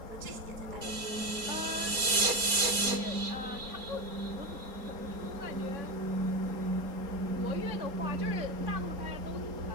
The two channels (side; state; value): left; late; 4.3 ms